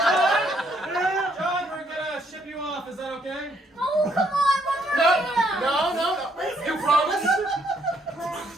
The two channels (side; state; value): both; normal; correlation 0.70